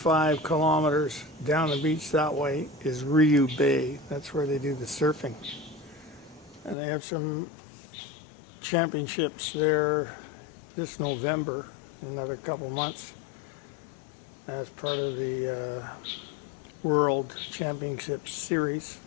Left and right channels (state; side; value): drops out; right; at 6.8 s